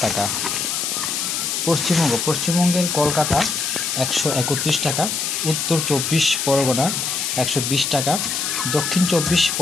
টাকা। পশ্চিমবঙ্গের কলকাতা 131 টাকা, উত্তর 24 পরগনা 120 টাকা, দক্ষিণ 24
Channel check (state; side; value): noise; left; hiss, 1 dB below the sound